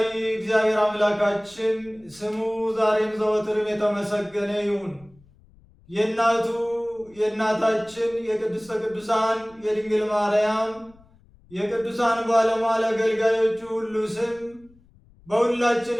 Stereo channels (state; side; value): noise; left; rumble, 28 dB below the sound